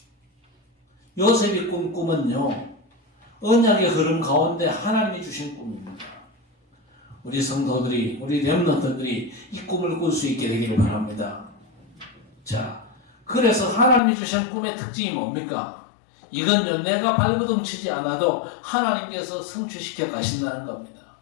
요셉이 꾼 꿈은요, 언약의 흐름 가운데 하나님이 주신 꿈입니다. 우리 성도들이, 우리 렘넌트들이 이 꿈을 꿀 수 있게 되기를 바랍니다. 자, 그래서 하나님이 주신 꿈의 특징이 뭡니까? 이건요, 내가 발버둥 치지 않아도 하나님께서 성취시켜 가신다는 겁니다.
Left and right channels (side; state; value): right; drops out; at 14.0 s